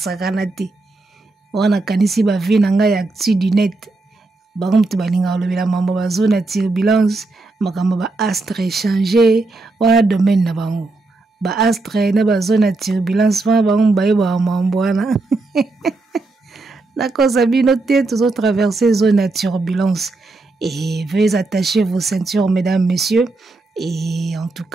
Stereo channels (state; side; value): quieter; left; 3.3 dB